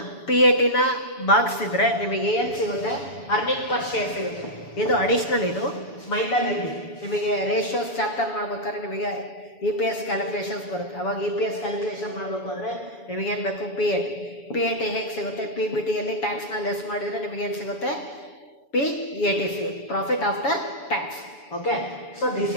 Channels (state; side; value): late; right; 7.0 ms